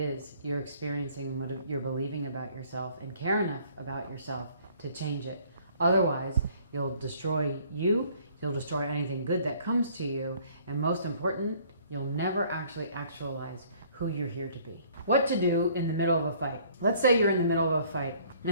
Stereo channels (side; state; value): both; inverted; correlation -0.58